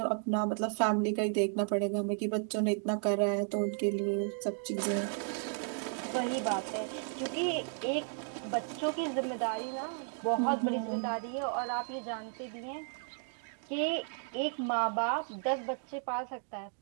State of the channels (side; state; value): left; silent; 55 dB below the other